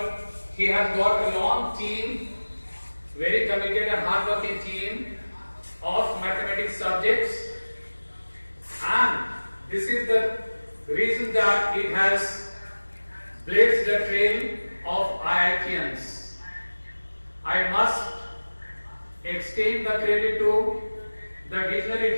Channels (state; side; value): inverted; both; correlation -1.00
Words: he has got a long team, very committed and hardworking team of mathematics subjects, and this is the reason that it has blazed the trail of IITians. I must extend the credit to the visionary